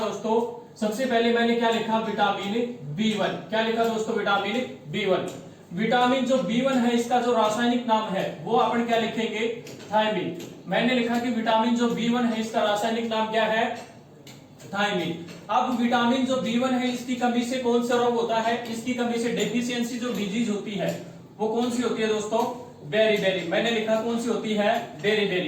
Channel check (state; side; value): identical; both; correlation 1.00